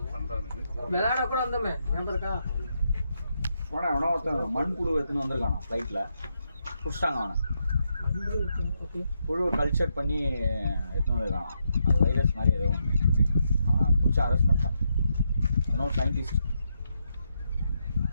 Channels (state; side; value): inverted; both; correlation -0.81